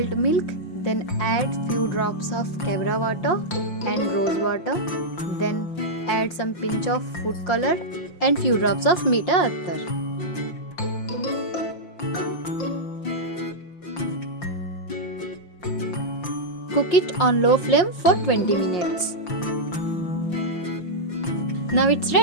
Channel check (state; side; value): late; right; 5.8 ms